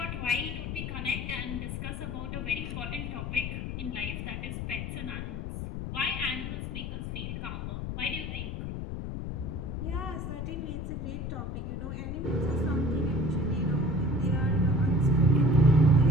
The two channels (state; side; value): noise; left; rumble, 4 dB below the sound